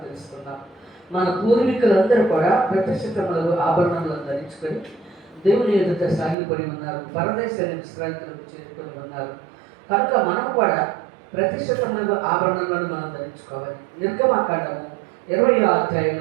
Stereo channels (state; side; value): drops out; left; at 6.4 s